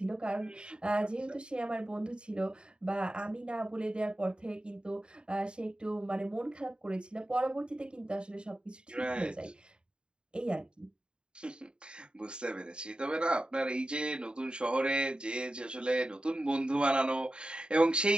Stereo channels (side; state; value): left; late; 0.051 ms